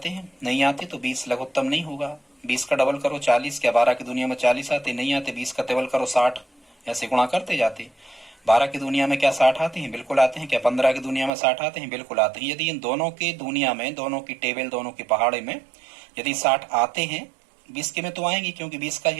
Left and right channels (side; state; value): left; drops out; at 11.3 s